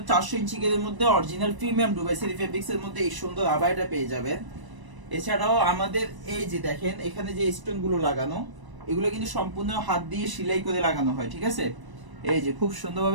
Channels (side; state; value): left; late; 1.0 ms